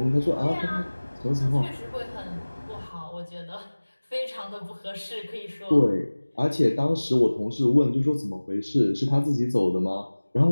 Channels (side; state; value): both; inverted; correlation -1.00